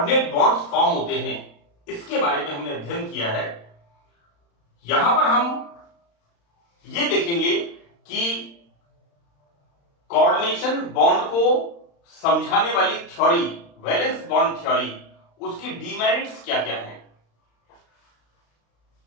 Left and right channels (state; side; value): late; right; 35 ms